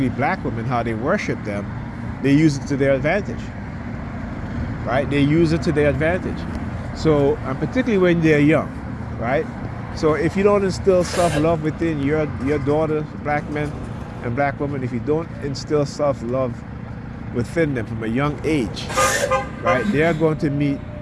black women, how they worship them. They use it to their advantage, right? They use it to their advantage. So, and particularly when they're young, right? So if you don't instill self-love within your daughters, black men and black women, if you don't instill self-love within them from a young age, right, they're going to meet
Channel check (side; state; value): both; identical; correlation 1.00